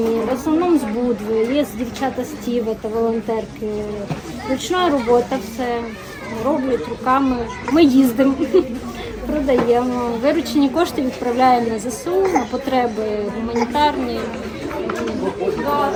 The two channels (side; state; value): both; identical; correlation 1.00